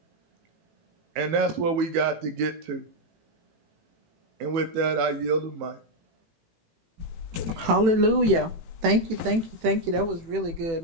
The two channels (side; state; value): left; late; 18 ms